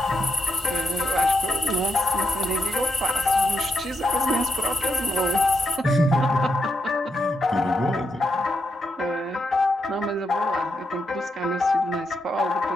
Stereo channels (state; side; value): normal; both; correlation 0.81